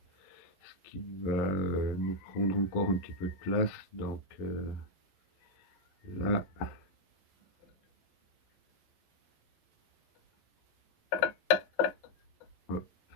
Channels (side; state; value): right; late; 11 ms